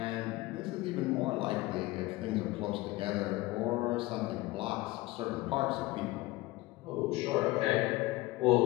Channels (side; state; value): right; quieter; 20.1 dB